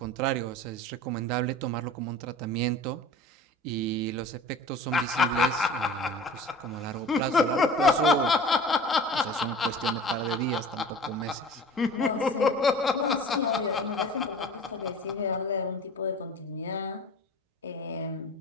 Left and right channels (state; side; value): normal; both; correlation 0.41